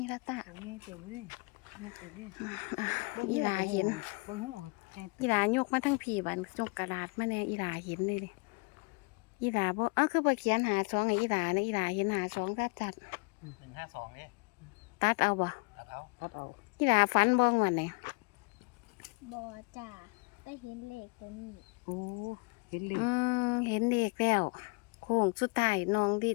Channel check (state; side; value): quieter; right; 31.7 dB